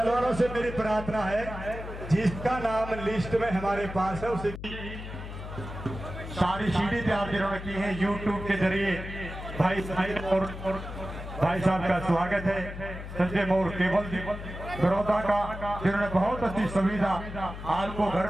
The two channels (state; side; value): noise; left; hum, 10 dB below the sound